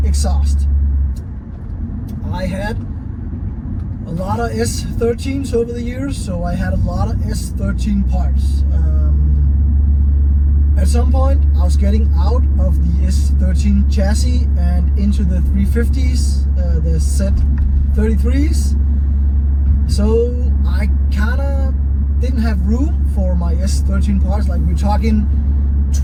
exhaust. I had a lot of S13s over the years, so I had a lot of S13 parts. At some point, I was getting out of the S13 chassis and into the 350s, the Z33s. So I kinda didn't have room for my S13 parts. Like, we're talking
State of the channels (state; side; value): identical; both; correlation 1.00